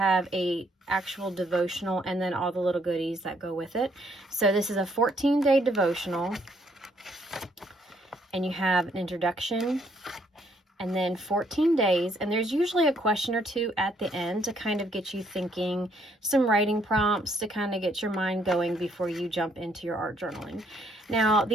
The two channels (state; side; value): normal; both; correlation 0.69